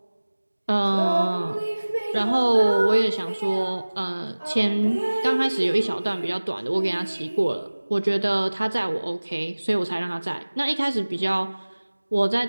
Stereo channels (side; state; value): both; inverted; correlation -1.00